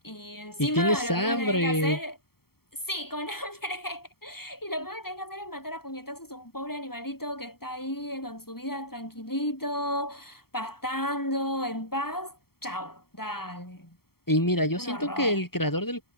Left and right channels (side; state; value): right; late; 0.95 ms